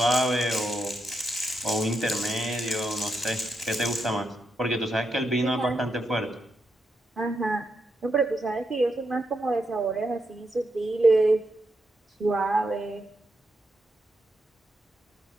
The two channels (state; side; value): normal; both; correlation 0.83